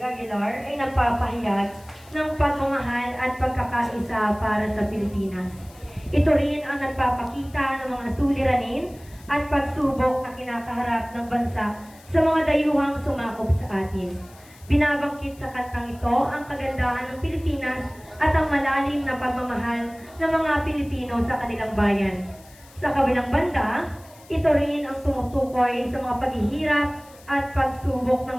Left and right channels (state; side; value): noise; left; hiss, 25 dB below the sound